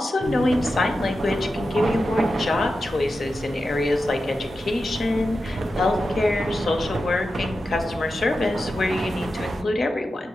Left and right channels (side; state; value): both; normal; correlation 0.91